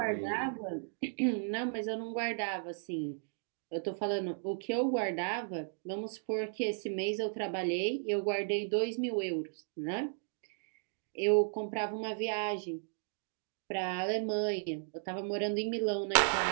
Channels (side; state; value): left; silent; digital silence